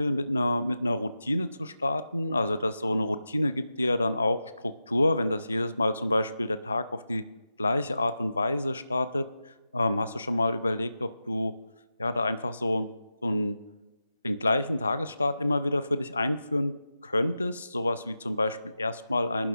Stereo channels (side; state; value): both; inverted; correlation -0.91